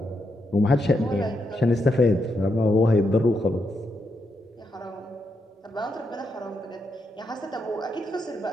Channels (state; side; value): normal; both; correlation 0.81